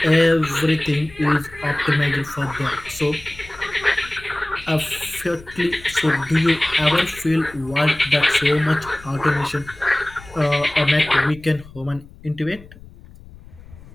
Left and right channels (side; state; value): left; noise; rumble, 20 dB below the sound